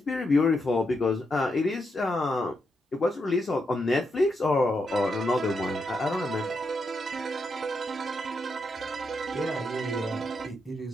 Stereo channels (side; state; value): both; normal; correlation 0.82